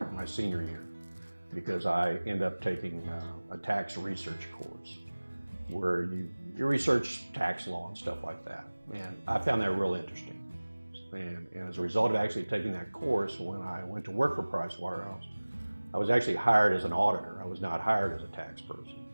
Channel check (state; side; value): inverted; both; correlation -1.00